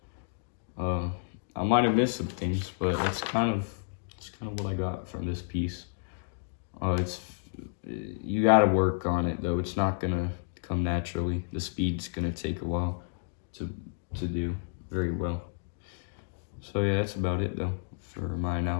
I might have missed some things, but it's kind of what I got from this piece. You got to work on it though. It's not gonna come naturally. The speed's gonna take a while to do very well. So yeah, that's about it though for my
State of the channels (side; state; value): right; silent; digital silence